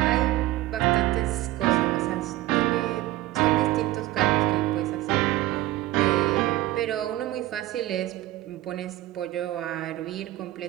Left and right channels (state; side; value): quieter; left; 16.3 dB